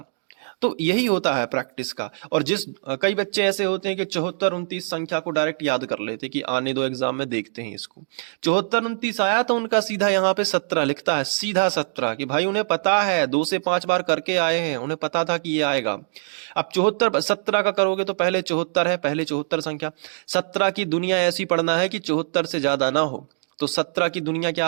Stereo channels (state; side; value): silent; left; digital silence